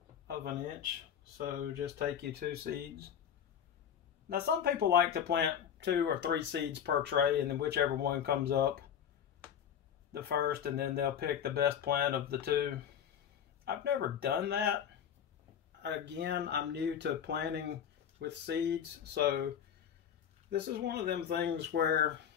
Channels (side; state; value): right; quieter; 8.8 dB